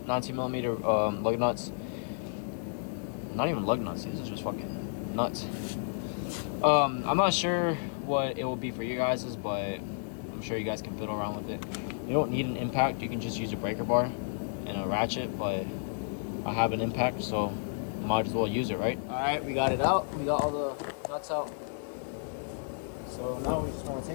lug nuts. Not even lug nuts, these are just fucking nuts. I'm not sure what it will be for you guys', but I'm sure you guys can fiddle around with it. You don't need an impact, you can just use a breaker bar and a ratchet, but I have an impact, so might as well use it, right? All right, we got it out. We got all the nuts out. So now we just want to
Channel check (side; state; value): right; silent; digital silence